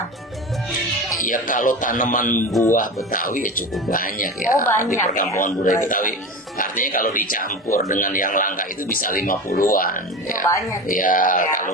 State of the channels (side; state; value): both; normal; correlation 0.27